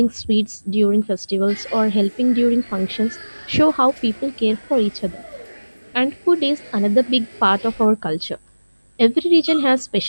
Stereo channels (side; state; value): both; inverted; correlation -1.00